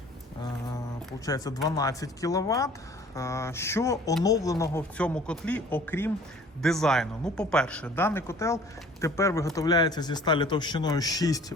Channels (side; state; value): both; normal; correlation 0.51